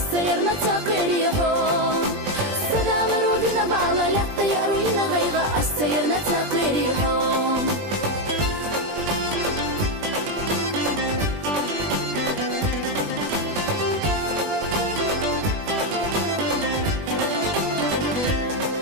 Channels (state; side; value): late; left; 20 ms